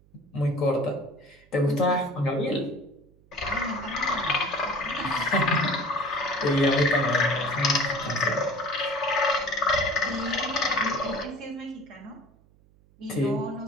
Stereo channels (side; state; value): right; noise; hum, 30 dB below the sound